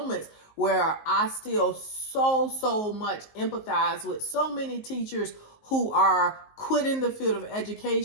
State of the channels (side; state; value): right; late; 19 ms